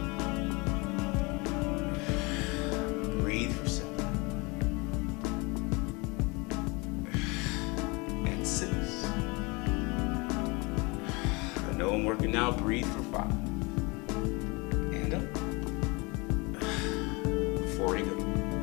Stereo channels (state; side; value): quieter; right; 27.1 dB